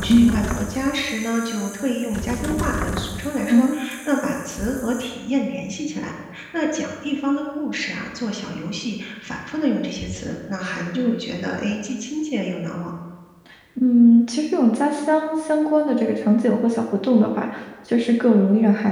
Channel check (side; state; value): both; identical; correlation 1.00